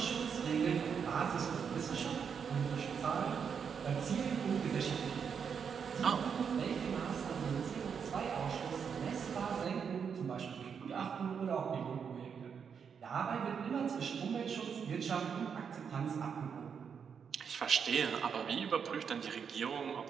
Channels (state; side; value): quieter; left; 6.8 dB